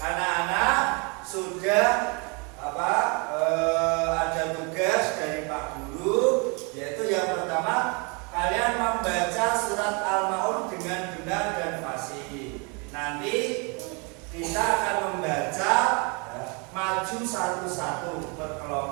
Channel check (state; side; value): quieter; left; 32.5 dB